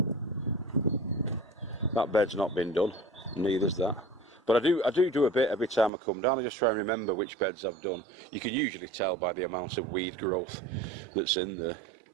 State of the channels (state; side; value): drops out; left; at 5.9 s